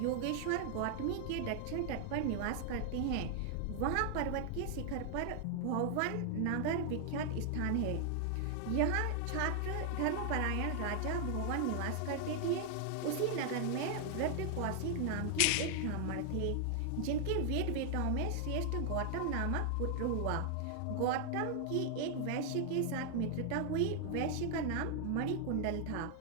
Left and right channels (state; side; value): different; both; correlation 0.00